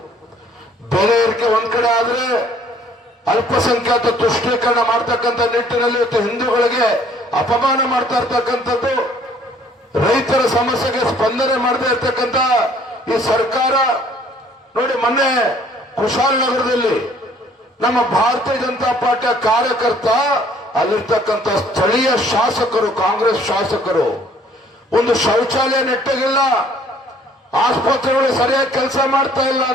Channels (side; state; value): both; normal; correlation 0.59